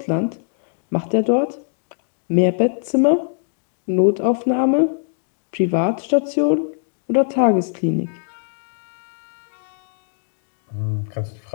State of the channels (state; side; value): silent; right; digital silence